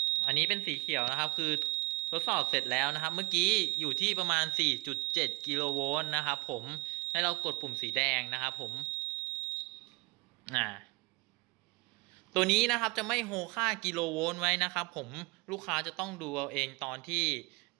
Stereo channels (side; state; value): left; quieter; 26.0 dB